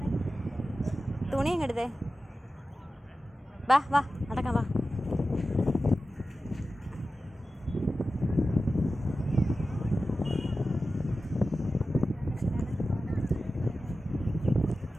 വാ വാ നടക്കാം വാ.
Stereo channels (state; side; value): normal; both; correlation 0.94